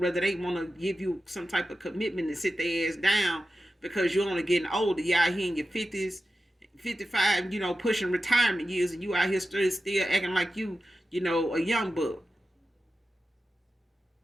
they want to give you some type of commitment and sit their ass down, because you're only getting older. You're out here in your 50s, 55, pushing retirement years, and you out here still acting like you, a young buck.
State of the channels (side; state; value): both; normal; correlation 0.93